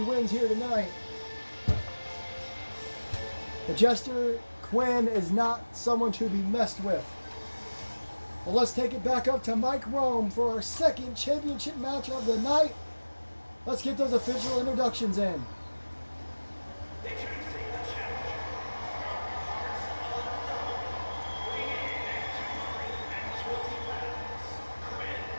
wins here tonight. The Jester Quinn is not someone to be messed with. Well, let's take it back up to Mike Rome for our second championship match of the night. Let's get those official introductions in. Introducing the challenger from parts unknown, weighing in at 220 pounds, Quinn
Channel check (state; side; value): inverted; both; correlation -1.00